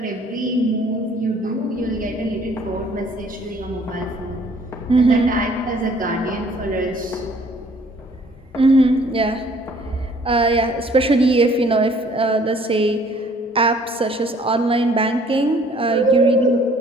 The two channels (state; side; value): normal; both; correlation 0.58